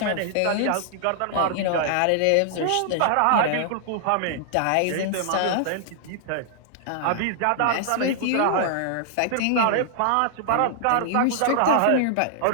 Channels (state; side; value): different; both; correlation -0.01